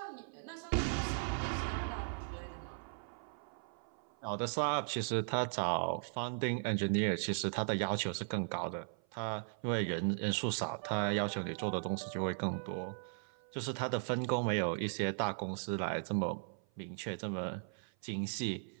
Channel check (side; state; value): left; silent; 53 dB below the other